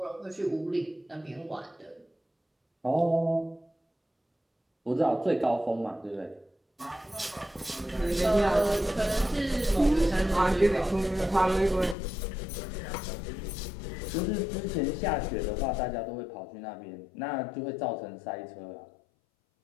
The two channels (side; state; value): right; drops out; at 12.0 s